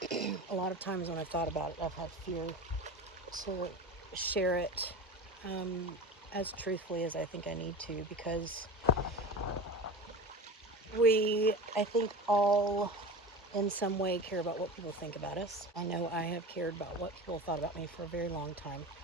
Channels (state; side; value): normal; both; correlation 0.29